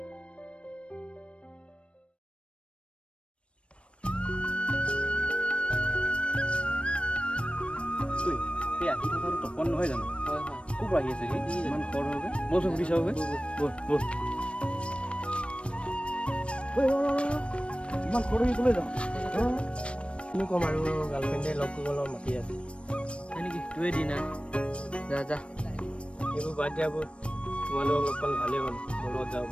এই আহি থকাটো তপন নহয় জানো? ক'ৰ পৰা আহি আছে সি? ইমান খৰ হৈ বলচোন সুধি চাওঁ ইমান খৰ হৈ ক'লৈ যাওঁ? কিনো ক'ম আৰু, গাৰ্লফ্ৰেণ্ডে লগ কৰিবলৈ মাতি আছে। হয় নেকি? তোৱে দি না যা যা। এইবোৰ বাদ দিয়াবোৰ, তোমালোকক লগ পালে ভালেই হ'ল। মোৰ লগত যাব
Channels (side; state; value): right; late; 0.059 ms